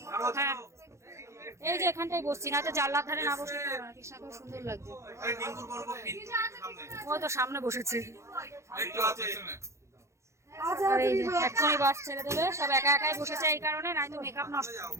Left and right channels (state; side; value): late; left; 0.14 ms